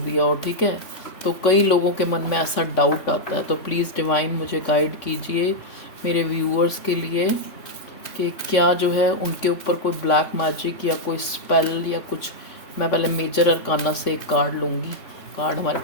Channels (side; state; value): right; late; 3.5 ms